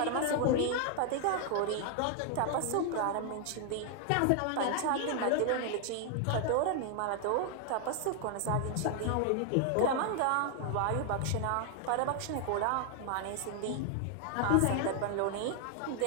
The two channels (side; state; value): both; different; correlation 0.00